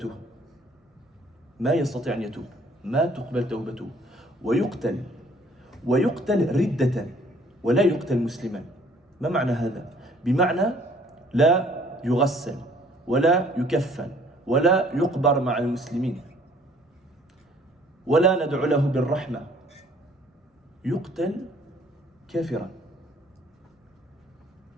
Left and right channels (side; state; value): both; normal; correlation 0.58